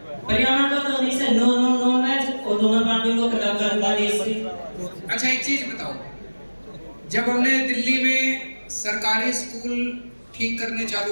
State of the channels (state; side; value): inverted; both; correlation -1.00